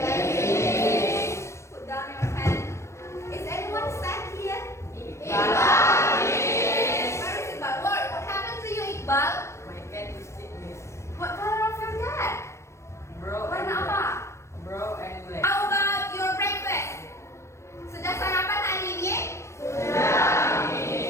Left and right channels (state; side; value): late; right; 0.13 ms